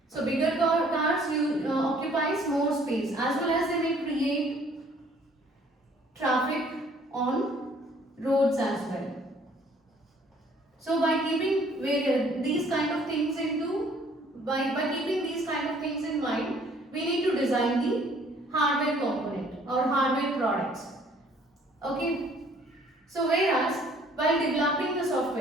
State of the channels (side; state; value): both; normal; correlation 0.59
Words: So bigger cars occupies more space, as well as they may create traffic on roads as well. So by keeping these kind of things by keeping these kind of things in mind, we need to design the hardware component or hardware products. Okay. So whereas while developing the